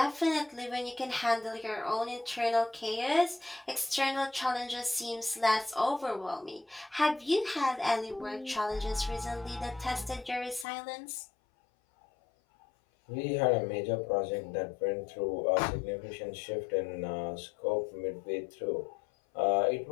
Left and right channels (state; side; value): drops out; right; at 10.7 s